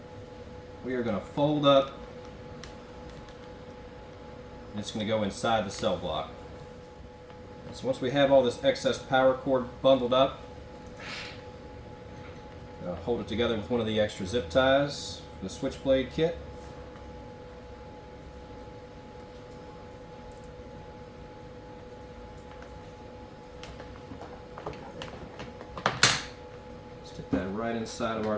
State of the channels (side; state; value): both; identical; correlation 1.00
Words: we are going to fold up, and it's going to go inside the CellBlok. So once we have all this excess power cord bundled up, hold it together with one of the extra zip ties from the SwitchBlade kit. Stick that right inside of our